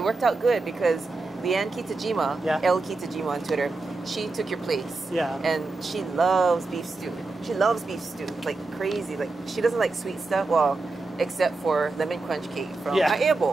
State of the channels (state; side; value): quieter; left; 3.4 dB